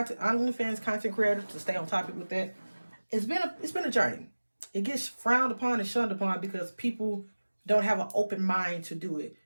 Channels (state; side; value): inverted; both; correlation -1.00